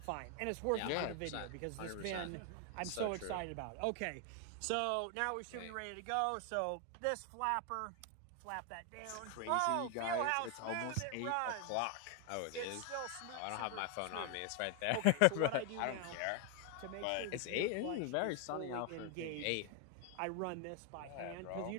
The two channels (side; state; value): both; different; correlation 0.01